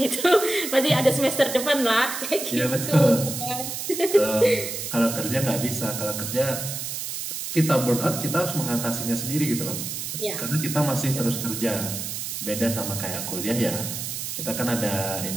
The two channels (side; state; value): right; noise; hiss, 5 dB below the sound